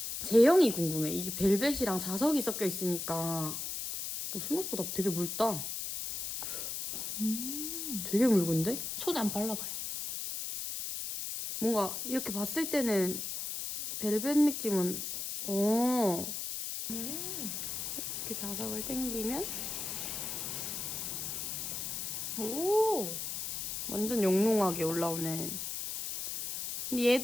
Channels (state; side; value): noise; left; hiss, 4 dB below the sound